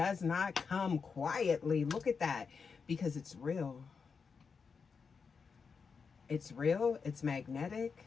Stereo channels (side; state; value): right; quieter; 5.5 dB